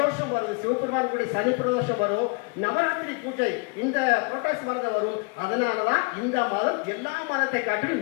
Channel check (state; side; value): quieter; right; 31.7 dB